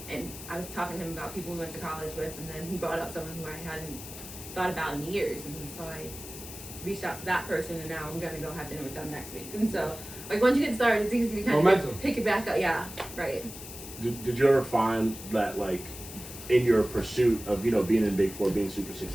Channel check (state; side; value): noise; left; hiss, 12 dB below the sound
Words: and I was talking to him about people we went to college with, and then he brought up someone who I hadn't thought about in years, and so I reached out to that person, and now I'm gonna go have dinner with them next week. And so, like, once you get started, it's easy to kind Momentum. of pick it back up. Yeah, right. Did you ever find that, like, in your pursuit of, you know, being in Big Four, being super